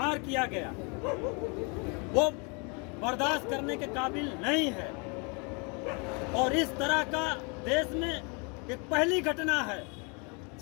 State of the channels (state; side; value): quieter; right; 33.2 dB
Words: किया गया, वो बर्दाश्त करने के काबिल नहीं है। और इस तरह का देश में एक पहली घटना है